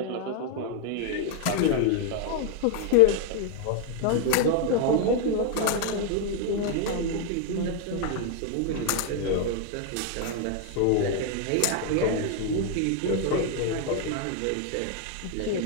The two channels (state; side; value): different; both; correlation -0.01